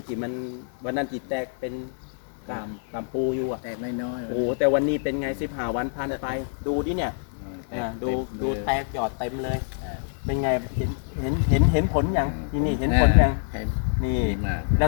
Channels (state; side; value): silent; right; digital silence